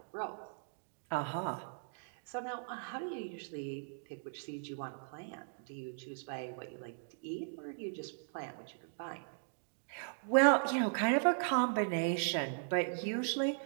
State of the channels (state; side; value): silent; left; digital silence